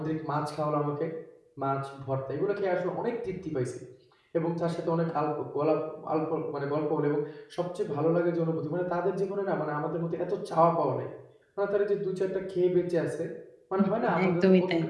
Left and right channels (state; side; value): identical; both; correlation 1.00